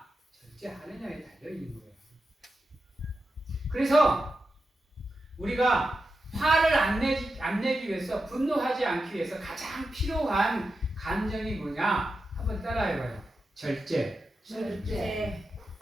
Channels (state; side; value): normal; both; correlation 0.90